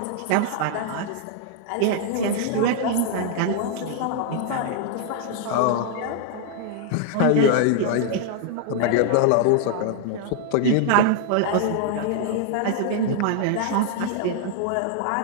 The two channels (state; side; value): different; both; correlation 0.00